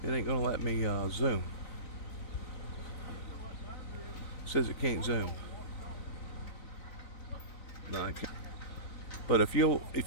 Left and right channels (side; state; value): right; late; 3.9 ms